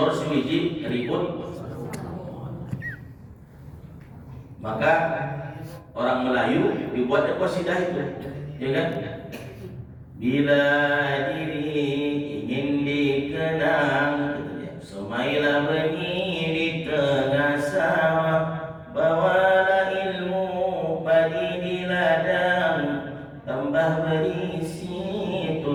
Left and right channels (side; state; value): both; identical; correlation 1.00